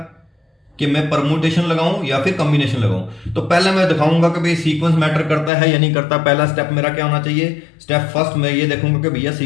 कि मैं परमुटेशन लगाऊं या फिर कॉम्बिनेशन लगाऊं। तो पहले मैं दिखाऊंगा कि भाई सीक्वेंस मैटर करता है या नहीं करता। पहला स्टेप मेरा क्या होना चाहिए, स्टेप फर्स्ट मैं ये देखूंगा कि भैया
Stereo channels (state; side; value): drops out; right; at 5.5 s